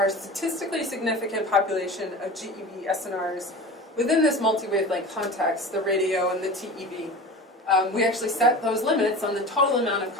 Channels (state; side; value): normal; both; correlation 0.34